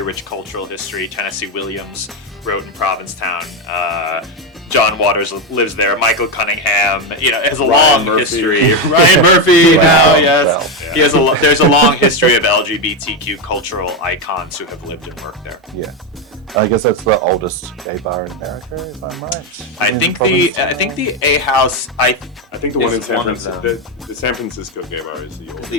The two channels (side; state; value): both; normal; correlation 0.09